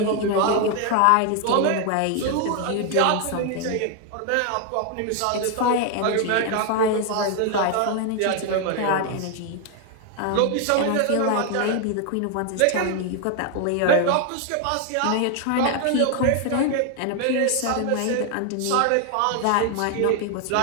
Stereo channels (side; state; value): both; different; correlation 0.01